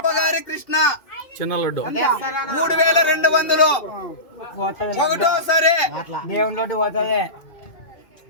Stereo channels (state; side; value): late; right; 2.5 ms